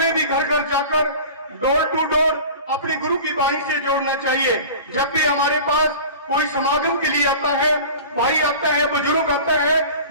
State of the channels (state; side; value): inverted; both; correlation -0.38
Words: भी घर घर जाकर डोर टू डोर अपने गुरु की वाणी से जोड़ना चाहिए। जब भी हमारे पास कोई समागम के लिए आता है, भाई आता है, बुजुर्ग आता है